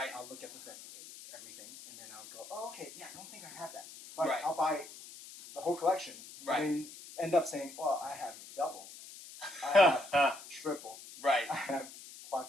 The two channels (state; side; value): noise; left; hiss, 15 dB below the sound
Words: I'll look at everything, and then I'll go, oh, okay, yeah, I don't think I have that. But Right. I'll buy the whole collection, Right. and then end up saying, well, I have double, I have triple, Right. I have